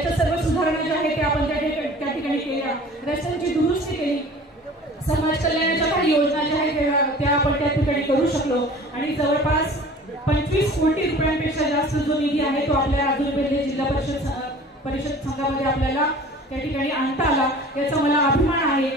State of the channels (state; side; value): normal; both; correlation 0.45